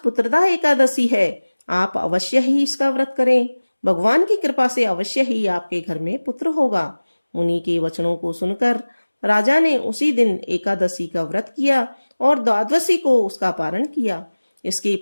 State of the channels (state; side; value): inverted; both; correlation -1.00